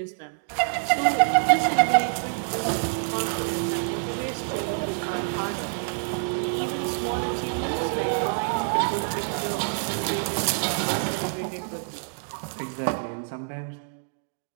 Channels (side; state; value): left; silent; digital silence